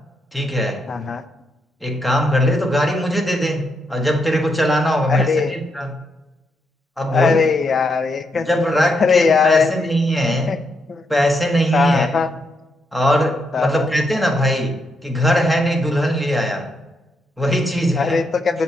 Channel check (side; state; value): both; normal; correlation 0.80